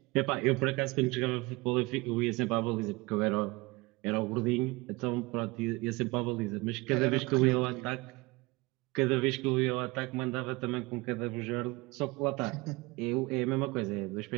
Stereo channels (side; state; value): left; quieter; 23.6 dB